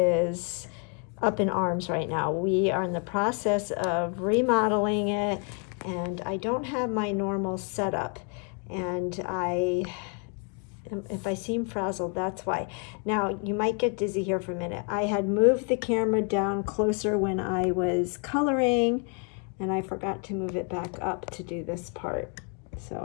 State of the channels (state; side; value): quieter; right; 38.8 dB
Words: up in arms right now. We are in the process of remodeling it, and I don't have my normal setup. And if I seem frazzled, that's why. Now, you might get dizzy here for a minute. I had moved the camera down closer when I was coloring, and I forgot to move it back up to do this part.